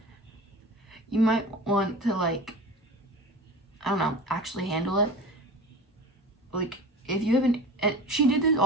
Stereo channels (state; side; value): normal; both; correlation 0.35